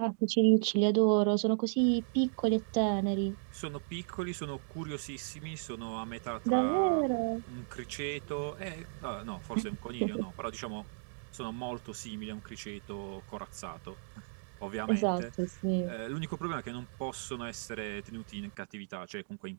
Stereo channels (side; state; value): left; silent; digital silence